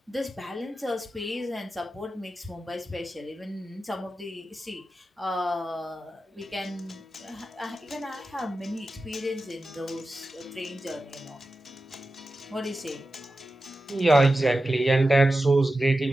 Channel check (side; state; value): both; normal; correlation 0.93